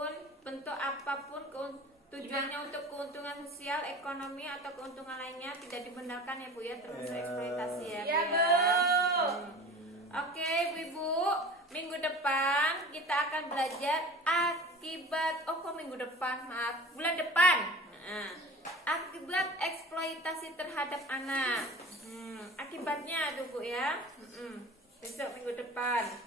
bentuk apapun, tujuannya untuk keuntungan sosial, ekonomi atau keuntungan lainnya tidak dibenarkan ya Bu ya, termasuk eksploitasi ya Bu. Iya Bu. Oke Bu-ibu, minggu depan kita akan belajar akibat. Minggu depan, maaf, bulan depan. Akibat eksploitasi terhadap anak. Akibatnya tuh Bu ya. Besok minggu depan.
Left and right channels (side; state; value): both; normal; correlation 0.39